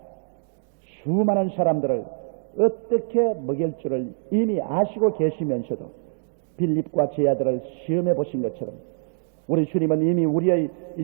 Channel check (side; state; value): left; silent; 62 dB below the other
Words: 수많은 사람들을 어떻게 먹일 줄을 이미 아시고 계시면서도 빌립과 제 아들을 시험해 보신 것처럼 우리 주님은 이미 우리의